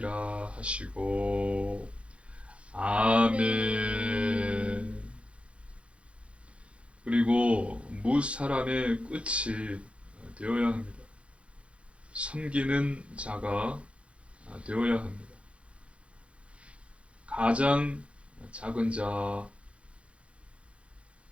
하시고 아멘. 그리고 무사람의 끝이 되어야 합니다. 섬기는 자가 되어야 합니다. 가장 작은 자,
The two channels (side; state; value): left; late; 0.061 ms